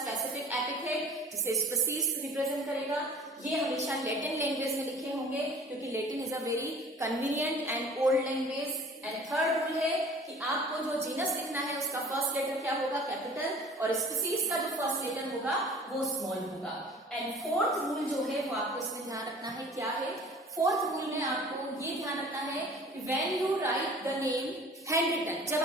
एपिथेट जिसे स्पीसीज रिप्रेजेंट करेगा। ये हमेशा लैटिन लैंग्वेज में लिखे होंगे क्योंकि Latin is a very convenient and old language. And third rule है कि आपको जो जीनस लिखना है उसका फर्स्ट लेटर क्या होगा, कैपिटल, और स्पीसीज का जो फर्स्ट लेटर होगा वो स्मॉल होगा। एंड 4th रूल जो है वो आपको इसमें ध्यान रखना है, क्या है 4th रूल में आपको ये ध्यान रखना है कि when you write the name handwritten, जब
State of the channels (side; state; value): both; normal; correlation 0.47